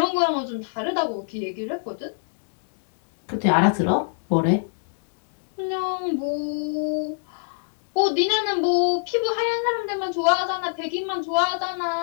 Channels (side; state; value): right; silent; digital silence